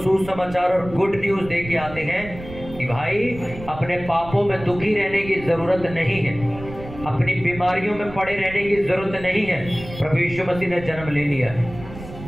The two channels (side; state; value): right; noise; rumble, 14 dB below the sound